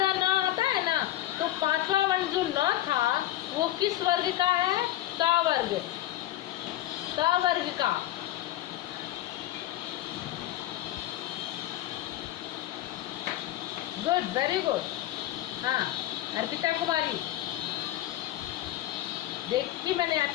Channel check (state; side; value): quieter; right; 14.4 dB